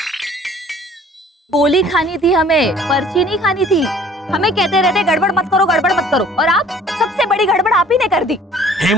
गोली खानी थी हमें, पर्ची नहीं खानी थी। हमें कहते रहते गड़बड़ मत करो, गड़बड़ मत करो, और आप सबसे बड़ी गड़बड़ आप ही ने कर दी।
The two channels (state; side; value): normal; both; correlation 0.53